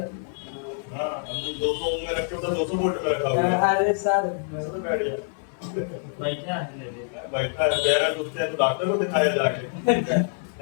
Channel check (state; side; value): silent; right; 61 dB below the other